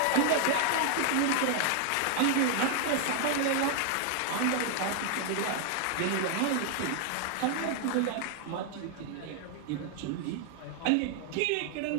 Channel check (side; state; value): both; different; correlation 0.00